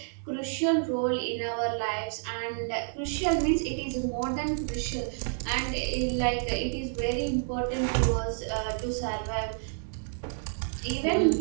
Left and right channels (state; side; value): silent; left; digital silence